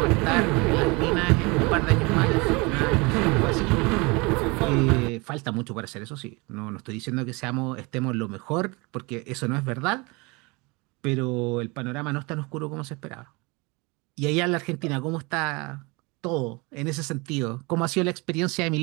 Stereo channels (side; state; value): left; quieter; 26.8 dB